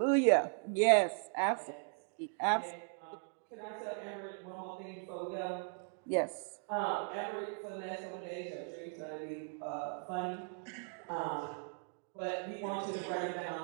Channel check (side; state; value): left; silent; 52 dB below the other